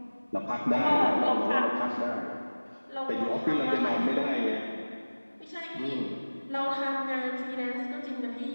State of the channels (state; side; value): inverted; both; correlation -1.00